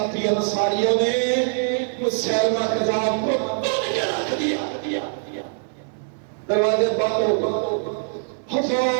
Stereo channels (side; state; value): left; silent; 63 dB below the other